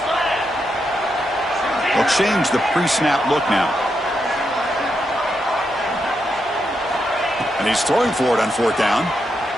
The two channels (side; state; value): both; normal; correlation 0.83